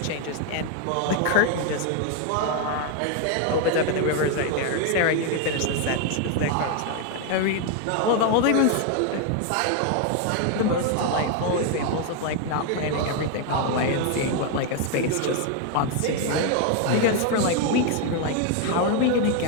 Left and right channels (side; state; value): both; different; correlation 0.00